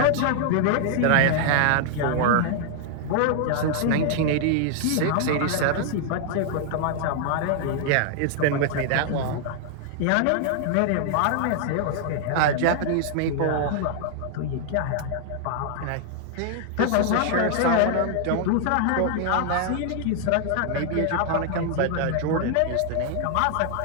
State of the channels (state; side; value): different; both; correlation 0.00